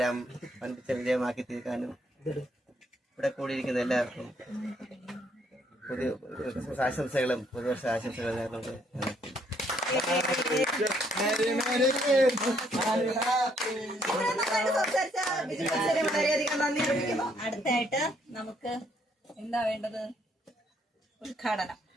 വൻപിച്ച വിജയമാക്കി തീർക്കാനും ഇവിടെ കൂടിയിരിക്കുന്ന എല്ലാവർക്കും പുതിയ ആശംസകളും പുതുവർഷ ആശംസകളും നേർന്നുകൊണ്ട് വളരെയധികം നന്ദി അറിയിക്കുന്നു. അടുത്തായിട്ട് നമുക്ക് എന്താ വേണ്ടത്?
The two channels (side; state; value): both; normal; correlation 0.69